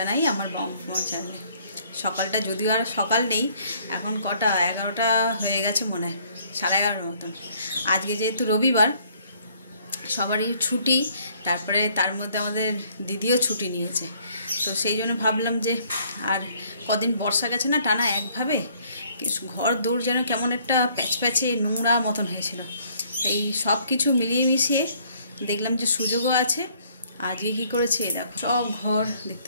আমার বঙ্গভ্রমণ চ্যানেলে। সকালটা যদিও আর সকাল নেই, এখন কটা 11টা হয়ে গেছে মনে হয়, 11:30 মতন। আজকে যেহেতু রবিবার, সবারই ছুটি, তারপরে তার মধ্যে আমাদের দিদিও ছুটি নিয়েছে, তো সেই জন্য ভাবলাম যে আর কদিন বর্ষা গেছে না টানা একভাবে, ঘর দৌড় যেন কেমন একটা প্যাচপ্যাচে নোংরা মতন হয়েছিল। এই সব কিছু মিলিয়ে মিশিয়ে দেখলাম যে সুযোগও আছে। আজকে কী করেছে দেখো, সব ঘর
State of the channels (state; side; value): inverted; both; correlation -0.62